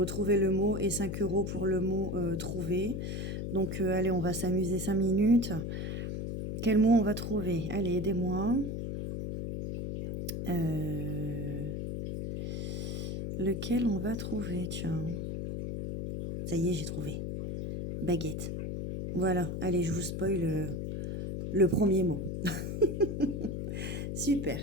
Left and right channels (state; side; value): noise; left; hum, 4 dB below the sound